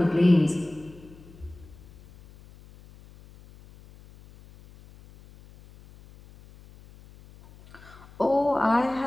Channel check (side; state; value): left; noise; hum, 23 dB below the sound